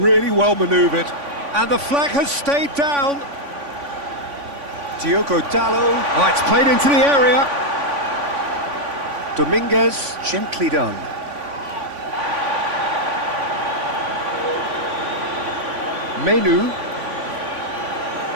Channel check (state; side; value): late; left; 3.5 ms